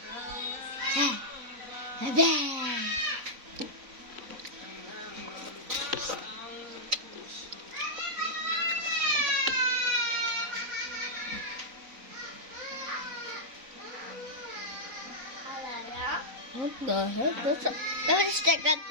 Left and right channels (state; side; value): late; left; 3.9 ms